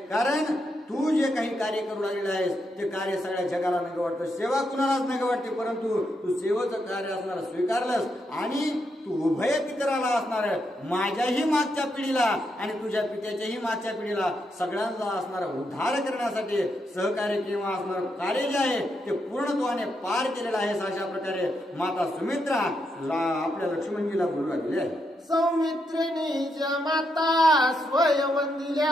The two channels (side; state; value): both; normal; correlation 0.81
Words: कारण तू जे काही कार्य करू लागलेलं आहेस ते कार्य सगळ्या जगाला नग वाटतं, सेवा कुणालाच नग वाटते, परंतु तू सेवेचं कार्य असणारा स्वीकारलंस. आणि तू उभय पितराला असणार माझ्याही मागच्या पिढीला आणि तुझ्या पित्याच्याही मागच्या पिढीला सगळ्यांना असणारा उद्धार करण्यासाठी सहकार्य किंवा असणारं कार्य जे आहे ते पूर्णत्वाने पार केलेलं आहेस. अशा प्रकारे माता सुमित्रा आपल्या लक्ष्मणजीला बोलू लागलेली आहे. सौमित्रिणी ज माता